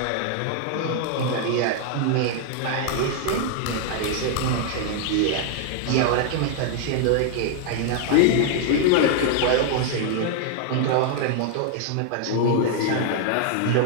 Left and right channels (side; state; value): both; different; correlation 0.00